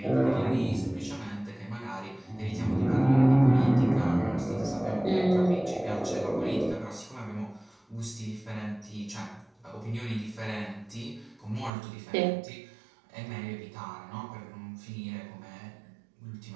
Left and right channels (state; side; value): drops out; left; at 11.7 s